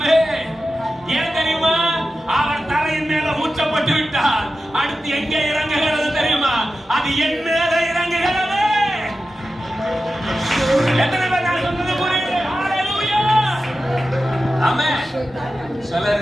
ஏன் தெரியுமா? அவர் தலையின் மேல ஊற்றப்பட்டு விட்டார். அடுத்து எங்கே இறங்குகிறது தெரியுமா? அது என் மேல இறங்குகிறது. எத்தனை பேர் நான் சொன்னது புரியுது? ஹalleluya. ஆமென்.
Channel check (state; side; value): normal; both; correlation 0.92